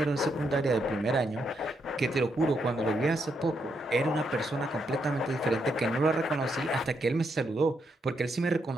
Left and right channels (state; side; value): normal; both; correlation 0.79